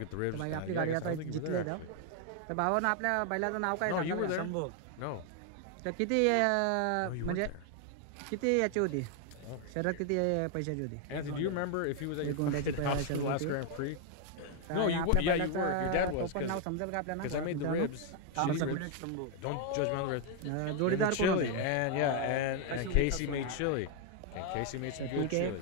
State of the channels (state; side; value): different; both; correlation 0.00